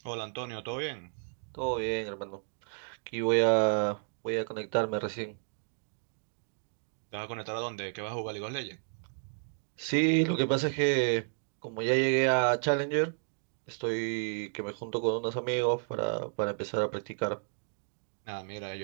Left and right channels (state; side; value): silent; left; digital silence